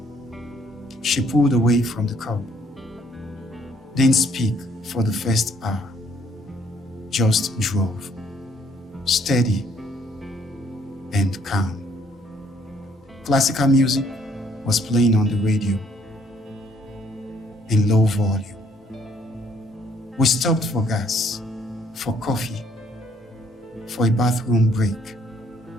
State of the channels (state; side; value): normal; both; correlation 0.65